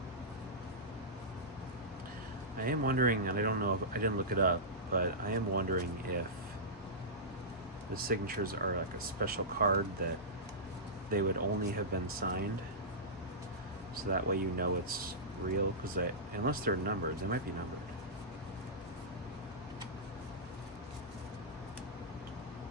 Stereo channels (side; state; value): both; normal; correlation -0.15